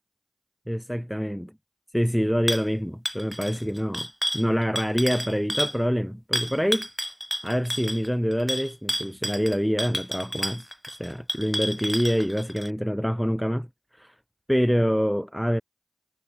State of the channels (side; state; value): both; identical; correlation 1.00